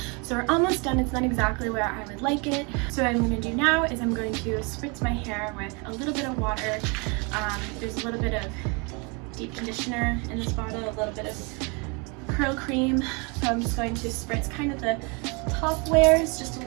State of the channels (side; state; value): left; quieter; 31.3 dB